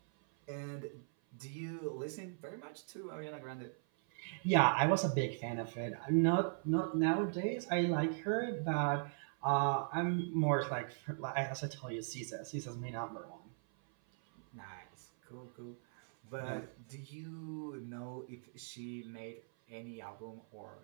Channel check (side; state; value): left; silent; 52 dB below the other